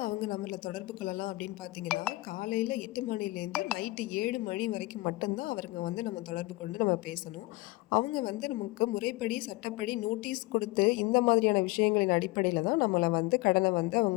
அவங்க நம்மளை தொடர்பு கொள்ளலாம் அப்படின்னு பார்த்தீங்கன்னா காலையில் 8 மணிலேருந்து நைட்டு 7 மணி வரைக்கும் மட்டும்தான் அவருங்க வந்து நம்ம தொடர்பு கொண்டு நம்ம பேசணும். அவங்க வந்து நமக்கு முறைப்படி சட்டப்படி நோட்டீஸ் கொடுத்து இந்த மாதிரியான விஷயங்களின் அடிப்படையில் தான் நம்மளை வந்து கடனை வந்து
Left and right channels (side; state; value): right; quieter; 21.1 dB